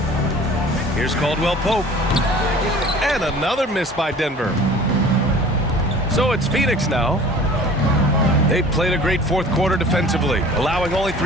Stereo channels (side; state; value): both; normal; correlation 0.45